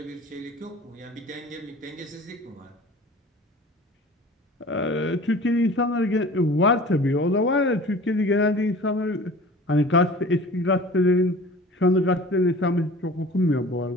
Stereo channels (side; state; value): both; normal; correlation 0.42